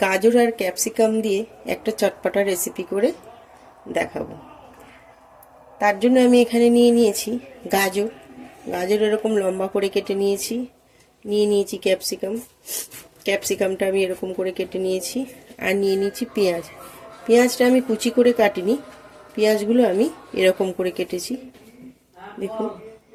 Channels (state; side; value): identical; both; correlation 1.00